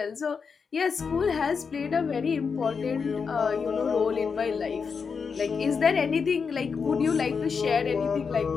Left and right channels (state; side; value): quieter; right; 5.6 dB